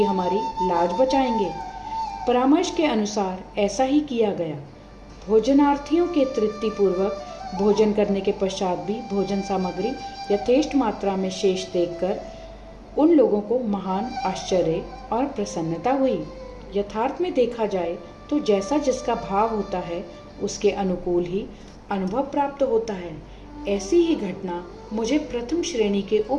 हमारी लाज बचाएंगे। परामर्श के अनुसार ऐसा ही किया गया। भोजनार्थियों के तृप्तिपूर्वक भोजन करने के पश्चात भी भोजन सामग्री यथेष्ट मात्रा में शेष देखकर उन लोगों को महान आश्चर्य और प्रसन्नता हुई। यथार्थ में देखा जाए तो जैसा जिसका भाव होता है उसके अनुकूल ही अनुभव प्राप्त होता है। ऐसी ही घटना मुझे प्रथम श्रेणी के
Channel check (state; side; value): identical; both; correlation 1.00